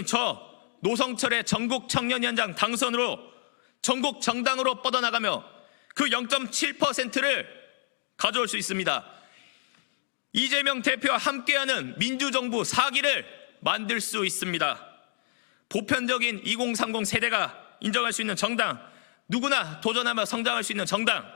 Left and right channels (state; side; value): silent; right; digital silence